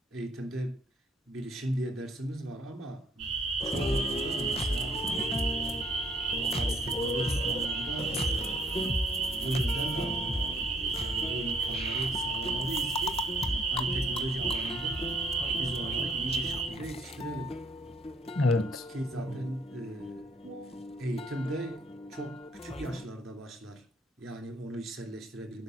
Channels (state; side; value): normal; both; correlation 0.64